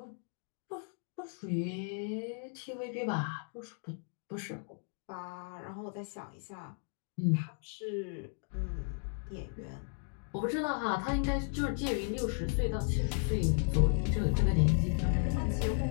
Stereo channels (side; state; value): right; silent; 54 dB below the other